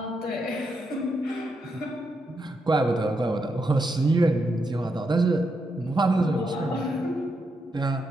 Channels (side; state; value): both; normal; correlation 0.82